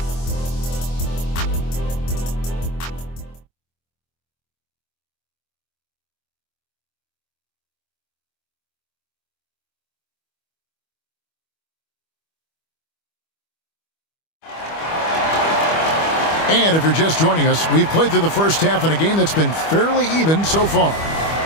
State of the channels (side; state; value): right; late; 25 ms